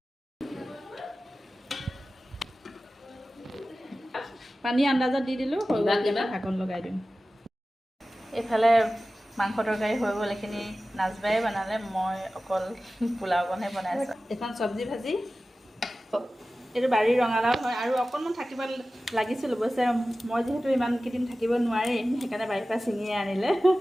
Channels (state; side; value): normal; both; correlation 0.96